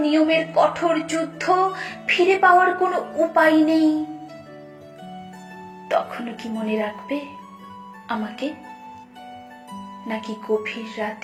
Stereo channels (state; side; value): identical; both; correlation 1.00